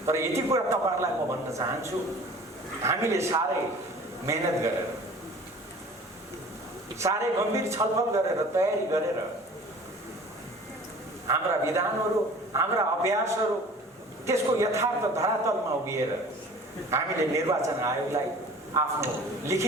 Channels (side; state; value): both; normal; correlation 0.45